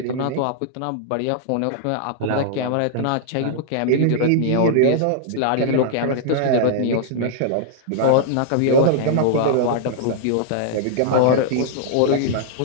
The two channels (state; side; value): different; both; correlation -0.01